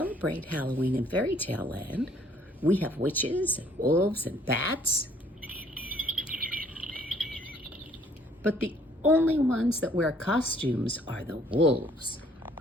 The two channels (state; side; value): normal; both; correlation 0.61